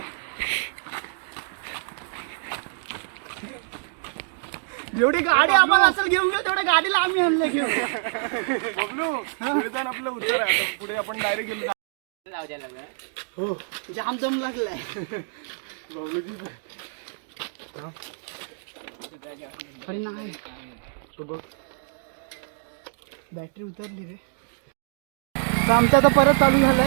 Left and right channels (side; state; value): left; silent; 61 dB below the other